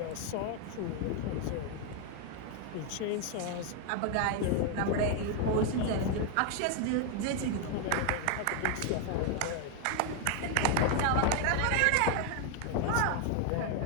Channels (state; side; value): different; both; correlation 0.01